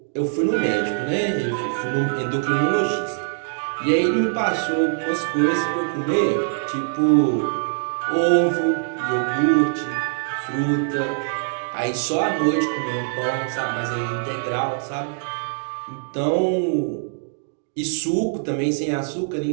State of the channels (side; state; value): left; silent; digital silence